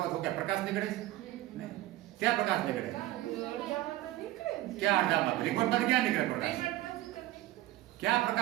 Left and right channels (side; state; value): left; quieter; 16.0 dB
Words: તો ક્યાં પ્રકાશ નીકળે છે? નહીં. ક્યાં પ્રકાશ નીકળે? ક્યાં અડધામાં? રિમોટમાં ક્યાં નીકળે પ્રકાશ? ક્યાં